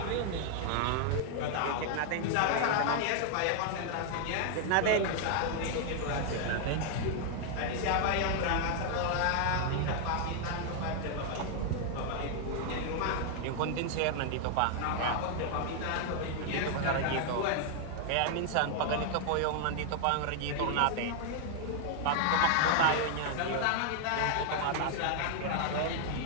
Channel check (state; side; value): different; both; correlation 0.00